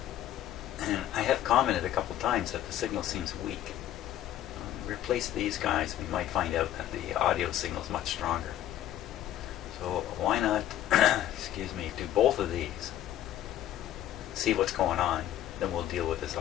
And I have commented a couple times that the signal seems weak. Replace these guys, we might find out that the audio signal is much stronger. So why not, excuse me, do both of these, see what's going on, then we'll deal with this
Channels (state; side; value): quieter; right; 12.4 dB